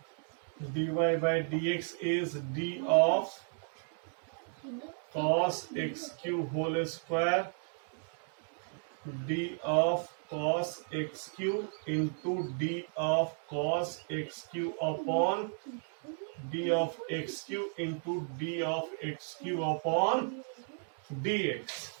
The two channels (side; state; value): left; silent; 55 dB below the other